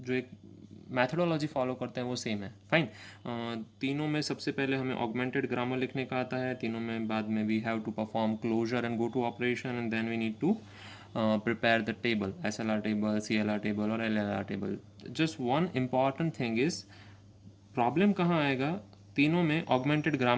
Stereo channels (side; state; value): both; identical; correlation 1.00